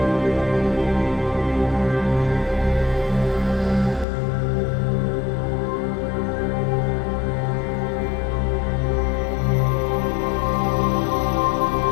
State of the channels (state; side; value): drops out; right; at 4.0 s